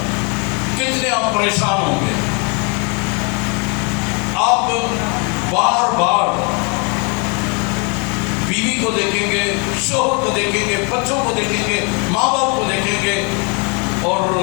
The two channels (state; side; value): quieter; right; 33.7 dB